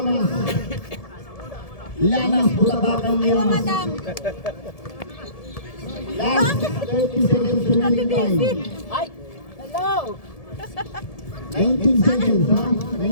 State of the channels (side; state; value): right; late; 1.7 ms